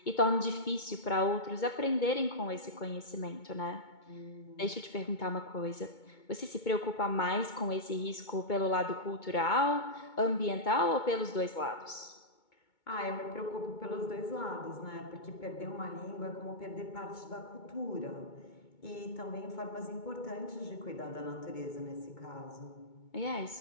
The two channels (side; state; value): right; late; 2.2 ms